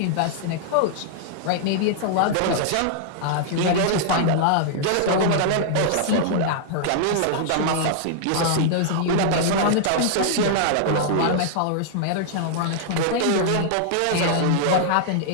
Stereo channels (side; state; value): both; different; correlation -0.01